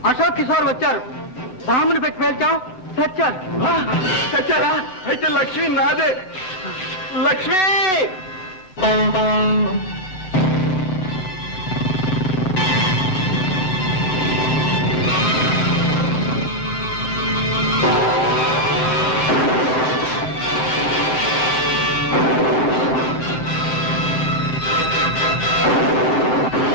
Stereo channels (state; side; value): late; right; 8.0 ms